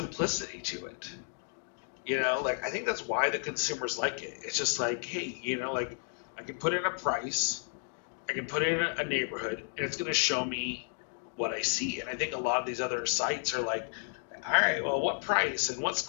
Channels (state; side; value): silent; right; 56 dB below the other